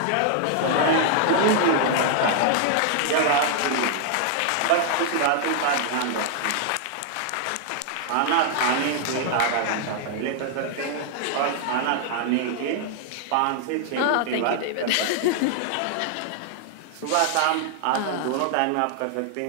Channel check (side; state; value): both; different; correlation 0.00